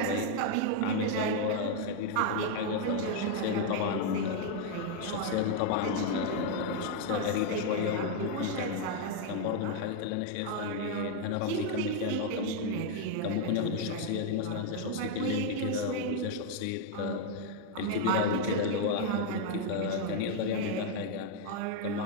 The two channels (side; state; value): both; different; correlation 0.00